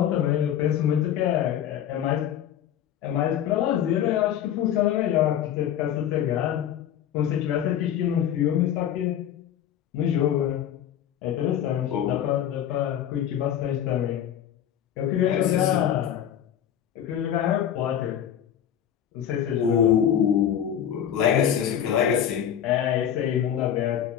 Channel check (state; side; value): quieter; right; 9.9 dB